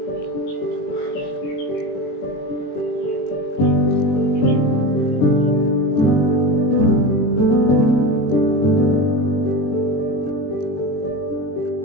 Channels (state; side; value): late; right; 20 ms